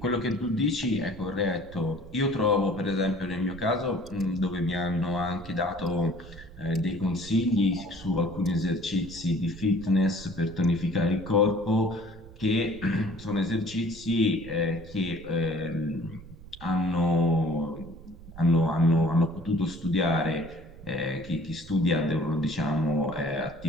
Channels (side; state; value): right; noise; rumble, 18 dB below the sound